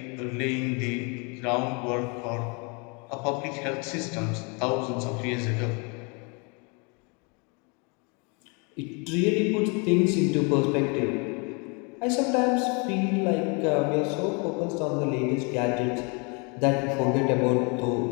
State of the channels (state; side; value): quieter; right; 33.0 dB